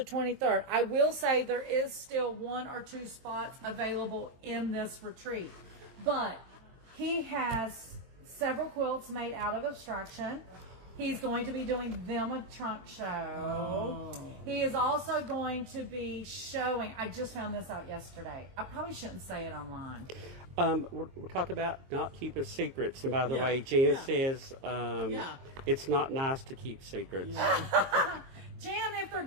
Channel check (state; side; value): late; left; 23 ms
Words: 23rd. I will say there is still 1 or 2 spots available in this retreat. But he has several quilts made out of Abstraction. He's going to be doing them a trunk show. Oh. He is also going to be showing, I just found this out yesterday. I probably shouldn't say it online. We're talking about not keeping secrets. And by the Yeah. way, Jan Yeah. says Yeah. it's not nice to keep secrets. Jan, if they're